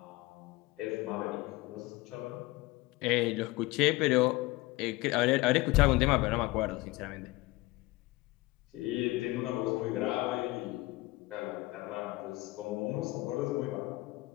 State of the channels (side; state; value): right; quieter; 20.8 dB